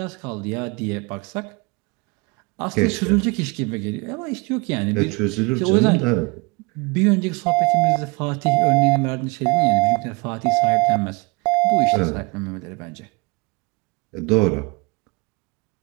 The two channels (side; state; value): left; quieter; 27.3 dB